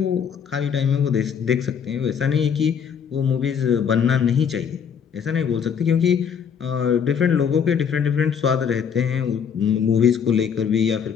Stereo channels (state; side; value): quieter; right; 7.3 dB